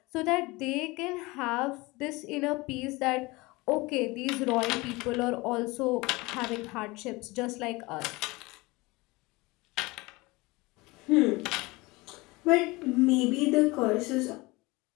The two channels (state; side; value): quieter; right; 22.9 dB